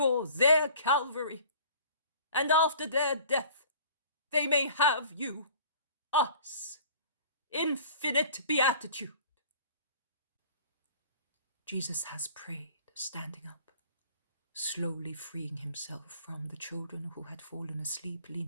their Calvary, and after their death they may have you, us, infinite beatitude. Jesus has prayed, standing up, slowly freeing himself from the children who had fallen asleep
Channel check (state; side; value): inverted; both; correlation -0.49